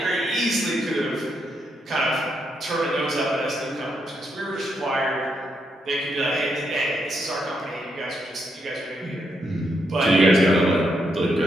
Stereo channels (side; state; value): both; normal; correlation 0.79